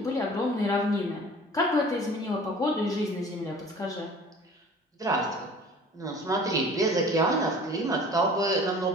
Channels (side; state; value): both; normal; correlation 0.46